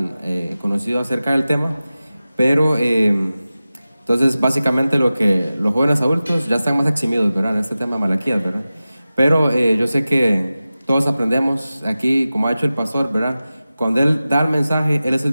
conocido acerca del tema, pero entonces básicamente lo que los jóvenes adultos ya están más eximidos, ¿verdad? En este tema de Malaquías, ¿verdad? Pero yo sé que todos aprendemos aquí, como ha hecho el pastor, ¿verdad? Cuando él da el mensaje, él es el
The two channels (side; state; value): both; inverted; correlation -0.95